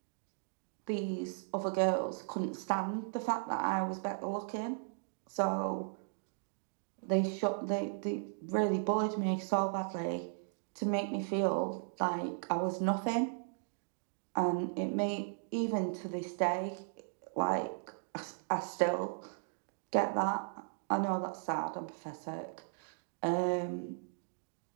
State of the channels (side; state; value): left; silent; digital silence